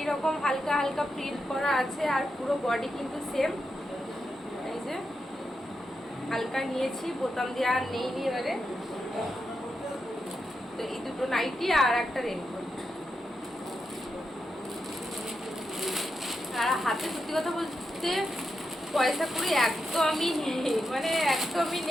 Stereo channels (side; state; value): both; normal; correlation 0.86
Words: হালকা হালকা প্রিন্ট করা আছে, আর পুরো বডি কিন্তু সেম। এই যে হালকা নিয়েছি, বোতাম দেওয়া আর নেই এবারে। তো এই দুটো নাইটি আর একটা রেনকোট। আর হাতে সত্যি কথা বলতে পয়সা করি একদমই নেই, মানে একদমই